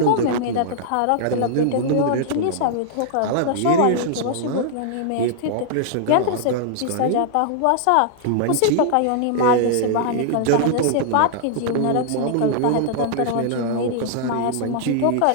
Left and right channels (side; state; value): both; different; correlation -0.01